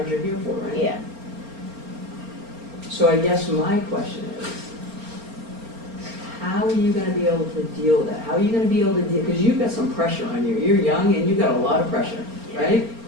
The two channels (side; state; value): left; late; 4.3 ms